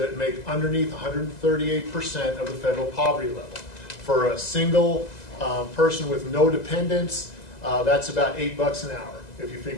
make underneath 138% of the federal poverty level. For a single person with no dependents, that's about $8 an hour. If you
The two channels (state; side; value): late; right; 2.0 ms